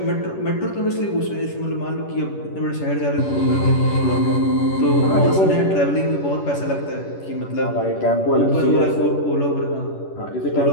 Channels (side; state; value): right; late; 11 ms